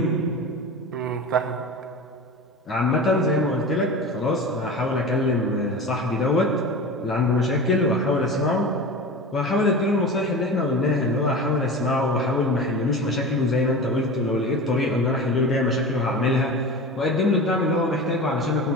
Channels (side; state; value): both; normal; correlation 0.31